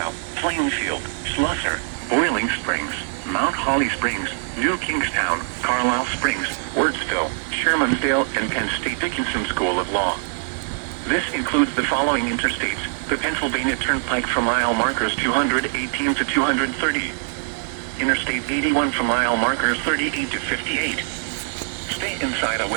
Plainfield, Slusser, Boiling Springs, Mount Holly Springs, New Kingstown, Carlisle Springs, Wurtsville, Shermansdale, and Penn State Dickinson School of Law. This includes the following interstates: the Pennsylvania Turnpike for mile markers 218 to 230. Interstate 81 for mile markers 38 to 58. Stay inside a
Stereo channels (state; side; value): silent; left; digital silence